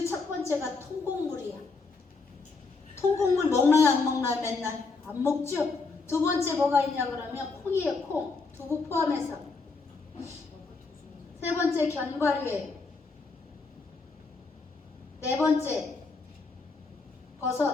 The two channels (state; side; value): quieter; right; 4.1 dB